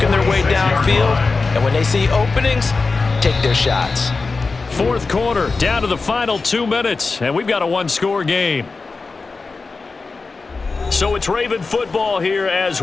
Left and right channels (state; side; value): quieter; right; 4.1 dB